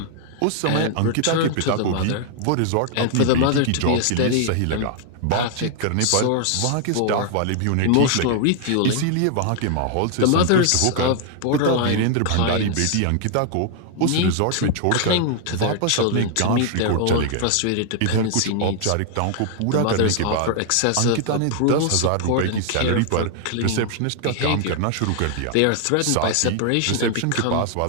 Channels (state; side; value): different; both; correlation 0.00